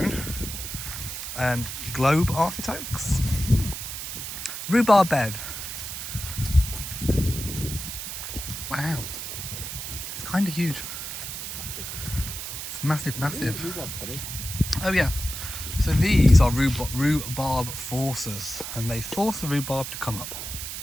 and globe artichokes, rhubarb bed. Wow. It's kind of huge. It's massive, massive. Oh yeah. So these are rhubarb forcers, and they force the rhubarb to come up.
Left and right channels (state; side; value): noise; right; hiss, 7 dB below the sound